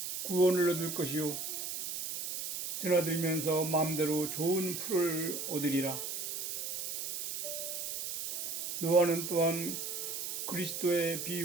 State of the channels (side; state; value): right; noise; hiss, 4 dB below the sound